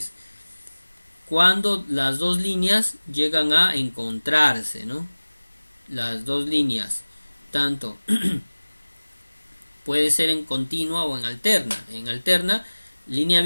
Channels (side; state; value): both; inverted; correlation -1.00